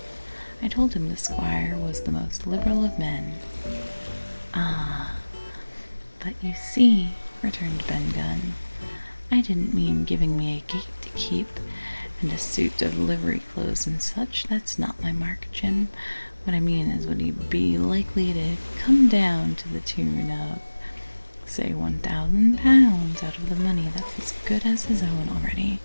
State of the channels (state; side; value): inverted; both; correlation -1.00